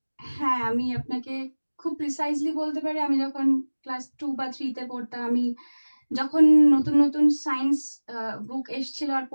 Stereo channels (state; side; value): inverted; both; correlation -1.00